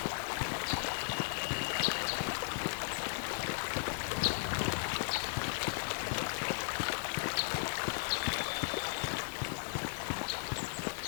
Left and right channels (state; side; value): silent; right; digital silence